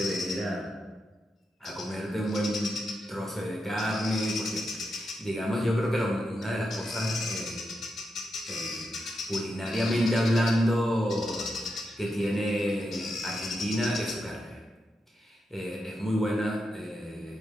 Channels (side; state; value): both; normal; correlation 0.85